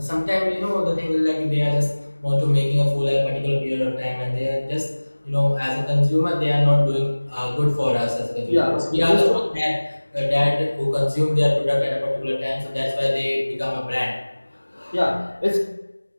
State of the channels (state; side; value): inverted; both; correlation -1.00